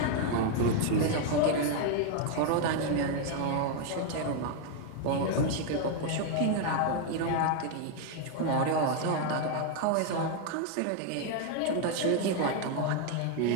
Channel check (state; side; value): different; both; correlation 0.00